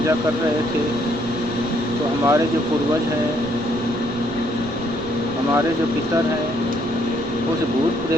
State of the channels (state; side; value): noise; right; rumble, 15 dB below the sound